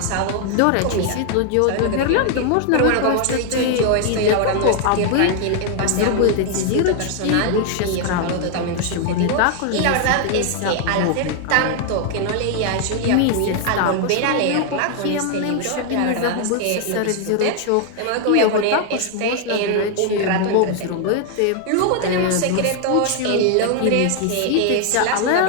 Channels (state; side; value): different; both; correlation 0.00